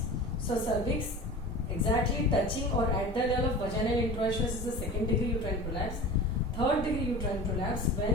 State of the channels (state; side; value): normal; both; correlation 0.35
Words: So cervix exactly touching or at the level of vaginal introitious is the second degree uterine prolapse. Third degree uterine prolapse,